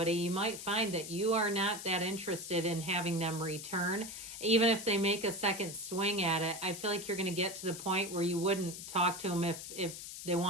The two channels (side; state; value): left; noise; hiss, 10 dB below the sound